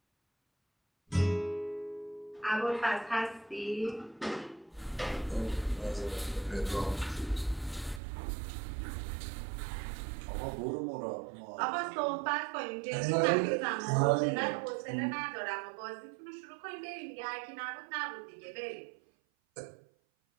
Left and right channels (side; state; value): left; drops out; at 8.0 s